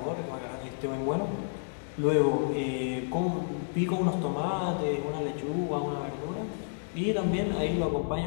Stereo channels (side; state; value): right; silent; digital silence